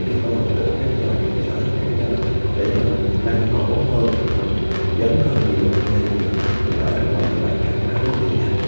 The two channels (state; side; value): inverted; both; correlation -1.00